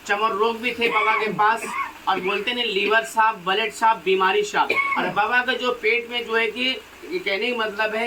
चमर रोग भी थे बाबा के पास। और बोलते हैं लीवर साफ, ब्लड साफ, बीमारी साफ। और बाबा का जो पेट में जो है कि कहने का मतलब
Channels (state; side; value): identical; both; correlation 1.00